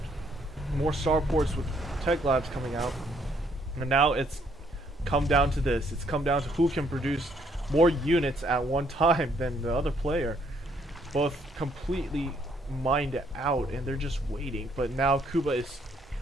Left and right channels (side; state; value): both; normal; correlation 0.69